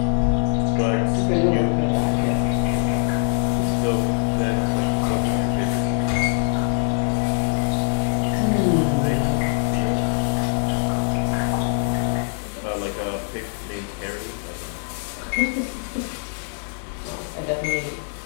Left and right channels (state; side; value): silent; right; 64 dB below the other